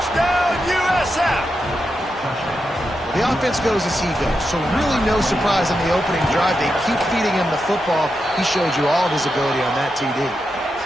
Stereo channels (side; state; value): both; normal; correlation 0.87